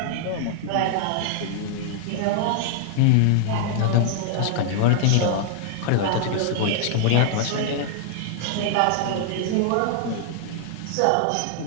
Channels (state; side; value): different; both; correlation -0.01